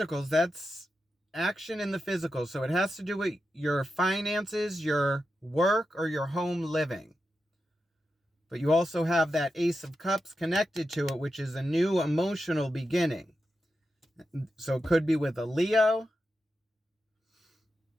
that's action in the physical. So it has to do with your finances, your work, or your home living. But you also have that Ace of Cups connected to it, which is a new emotional beginning. So it could be with a Leo.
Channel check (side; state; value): both; normal; correlation 0.89